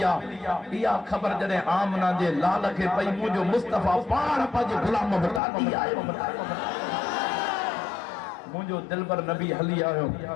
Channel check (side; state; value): right; drops out; at 5.4 s